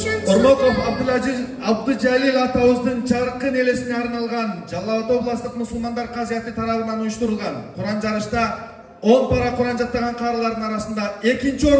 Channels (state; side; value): identical; both; correlation 1.00